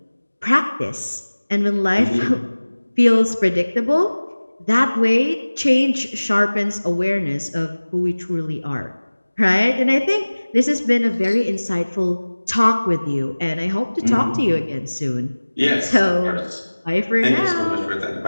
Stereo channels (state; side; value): inverted; both; correlation -1.00